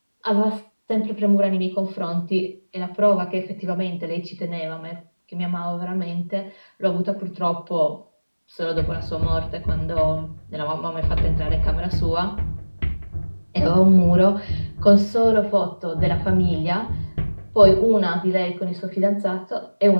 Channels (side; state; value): both; inverted; correlation -1.00